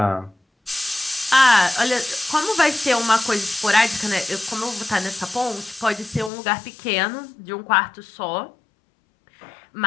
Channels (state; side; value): drops out; right; at 6.3 s